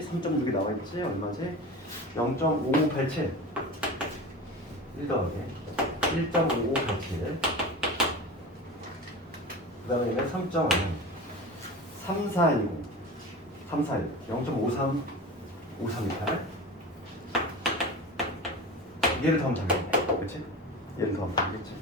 나와 있지? 얼마지? 0.5587 1 더하기 1.5587 그 다음에 얘는 3.5 3410 0.5328 얘를 더하면 되겠네. 그치? 얘를 더하면 되겠지?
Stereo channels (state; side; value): normal; both; correlation 0.31